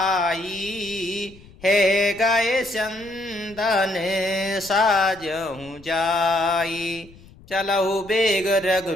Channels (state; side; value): noise; left; rumble, 23 dB below the sound